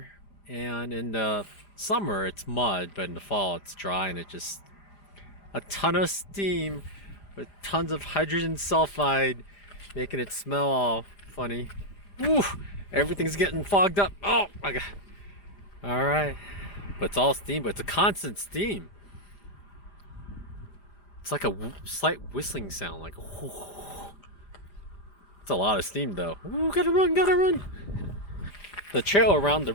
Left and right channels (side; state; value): right; late; 5.1 ms